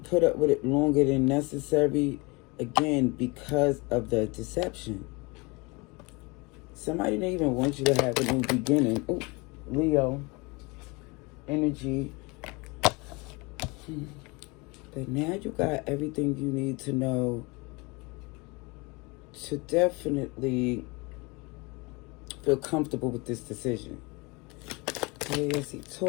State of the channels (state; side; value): quieter; right; 26.7 dB